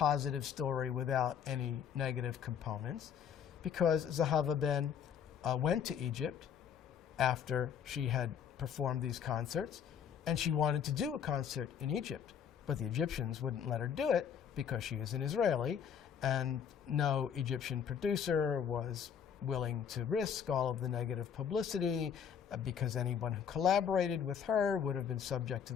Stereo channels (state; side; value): quieter; right; 8.1 dB